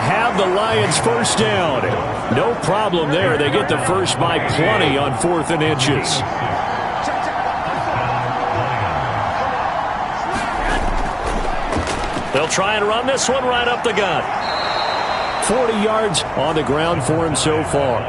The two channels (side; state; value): both; identical; correlation 1.00